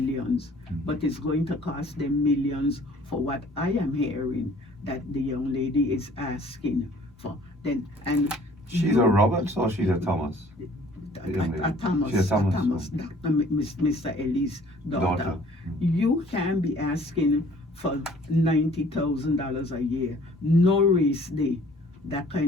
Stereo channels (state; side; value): normal; both; correlation 0.54